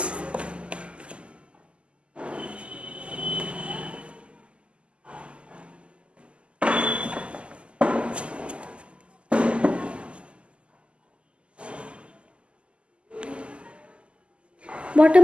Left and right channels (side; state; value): left; late; 0.054 ms